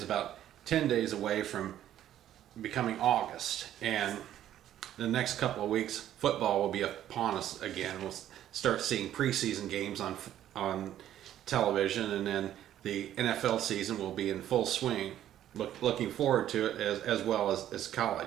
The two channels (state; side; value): quieter; left; 11.7 dB